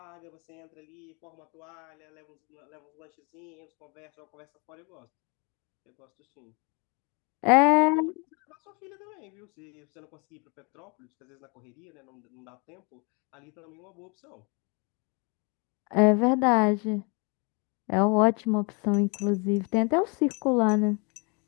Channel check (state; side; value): quieter; right; 32.5 dB